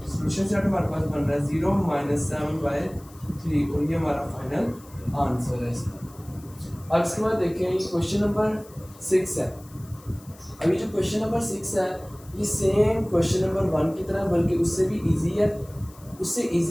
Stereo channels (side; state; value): left; noise; hiss, 24 dB below the sound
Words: सोल्यूशन सेट हमारे पास बन रहा है 0 - 7/3 और ये हमारा फाइनल आंसर है इसका। अब इसके बाद देखें ये क्वेश्चन नंबर 6 है। अभी जो क्वेश्चन नंबर 6 है ये सेम क्वेश्चन नंबर 1 की तरह बल्कि उससे भी इजी है। उससे